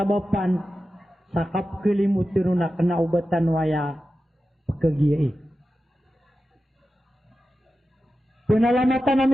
sa kapkalimutan na kanaubatan waya pagkagiyai. Pinalamatan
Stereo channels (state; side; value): normal; both; correlation 0.93